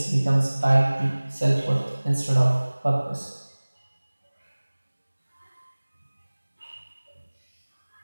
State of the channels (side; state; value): both; inverted; correlation -1.00